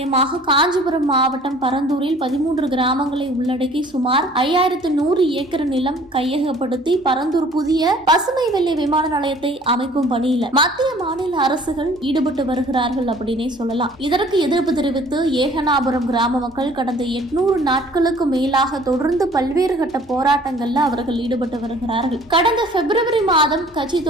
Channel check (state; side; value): normal; both; correlation 0.53